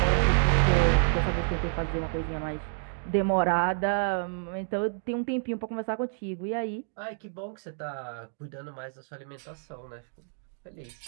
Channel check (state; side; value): silent; left; digital silence